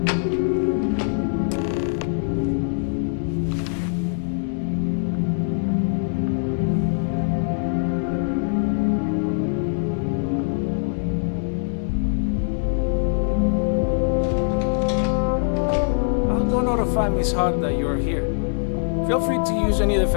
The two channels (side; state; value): right; silent; digital silence